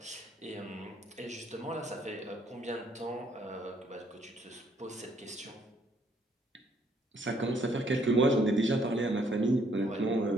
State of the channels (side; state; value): both; normal; correlation 0.67